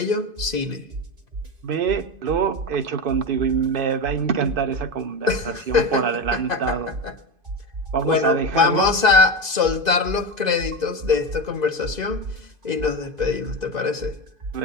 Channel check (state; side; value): late; left; 2.5 ms